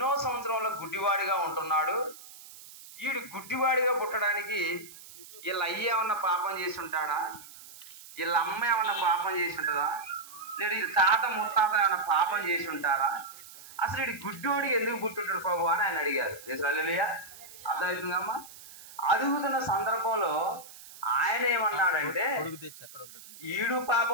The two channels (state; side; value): noise; right; hiss, 18 dB below the sound